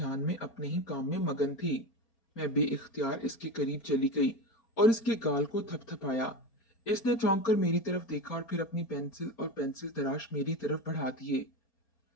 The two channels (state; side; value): late; right; 4.3 ms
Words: में अपने ही काम में मगन थी। मैं बेइख्तियार इसके करीब चली गई और इसके गाल को थपथपाया। इसने चौंक कर मेरी तरफ देखा और फिर अपनी पेंसिल और पेंसिल तराश मेरी तरफ बढ़ा दिए।